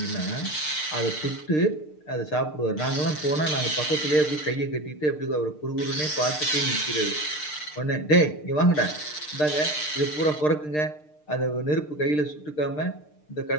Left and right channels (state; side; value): late; right; 6.6 ms